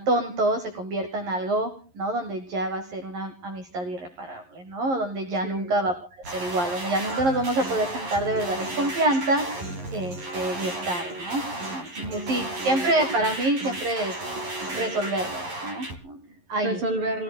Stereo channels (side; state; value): left; late; 11 ms